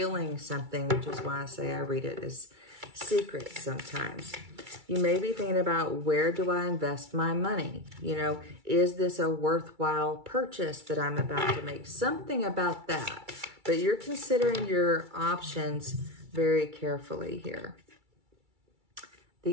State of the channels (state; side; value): late; left; 2.3 ms